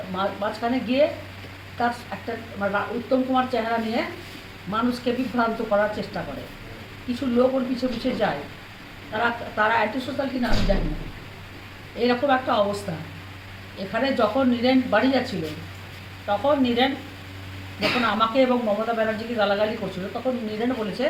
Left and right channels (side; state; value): both; identical; correlation 1.00